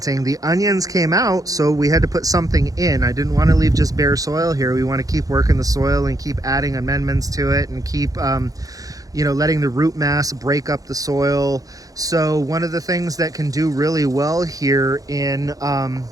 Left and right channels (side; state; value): left; late; 0.17 ms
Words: the onions came out, so we had to put something in. I didn't want to leave just bare soil here. We want to keep working the soil and keep adding amendments to it and keep you know, letting the root mass break up the soil. So one of the things that can do really well here in